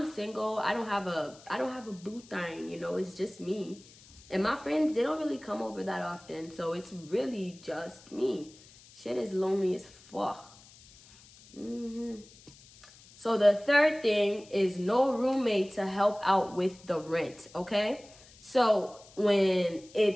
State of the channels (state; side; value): noise; left; hiss, 23 dB below the sound